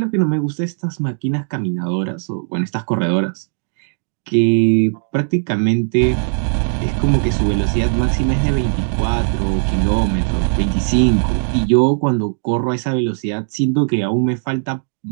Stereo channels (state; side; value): silent; left; digital silence